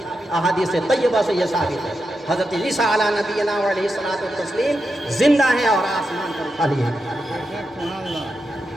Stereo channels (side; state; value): both; normal; correlation 0.87